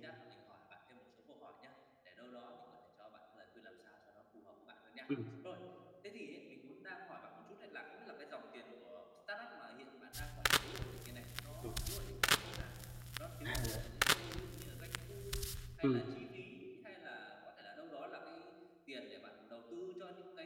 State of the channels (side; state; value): both; identical; correlation 1.00